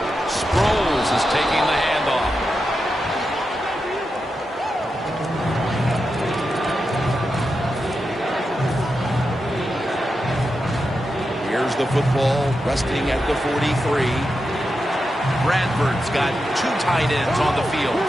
Sproles is taking the handoff. Here's the football resting at the 43. Bradford's got 2 tight ends on the field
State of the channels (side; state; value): both; normal; correlation 0.88